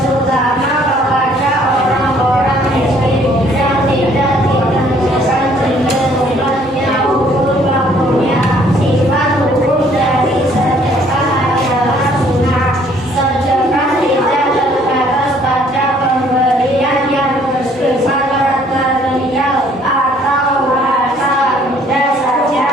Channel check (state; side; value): normal; both; correlation 0.61